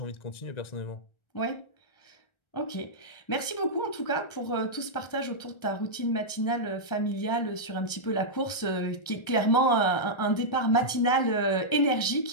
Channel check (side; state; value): right; late; 1.4 ms